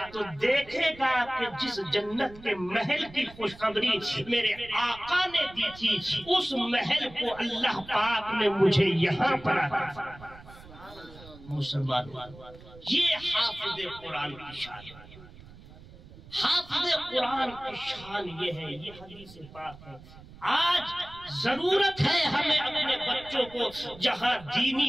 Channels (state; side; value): noise; right; rumble, 19 dB below the sound